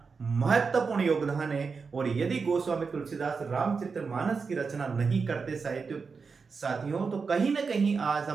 महत्वपूर्ण योगदान है। और यदि गोस्वामी तुलसीदास रामचरितमानस की रचना नहीं करते साथियों, तो कहीं ना कहीं आज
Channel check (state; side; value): quieter; left; 5.0 dB